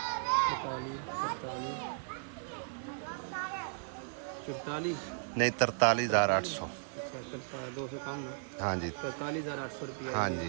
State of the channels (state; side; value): silent; left; digital silence